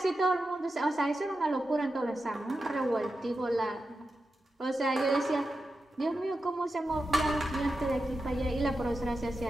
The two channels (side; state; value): both; normal; correlation 0.90